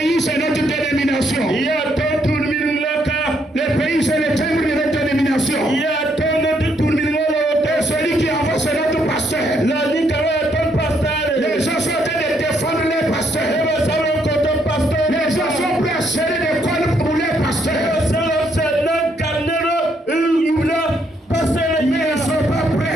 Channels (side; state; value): both; normal; correlation 0.73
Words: c'est notre dénomination. Le pays, c'est le timbre de notre dénomination. Et celui qui avance, c'est notre pasteur. Les gens sont en train de défendre les pasteurs. Les gens sont prêts à serrer des cordes pour les pasteurs. Mais ils ne sont pas